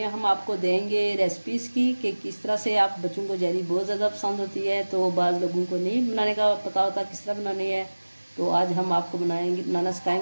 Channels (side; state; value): both; inverted; correlation -1.00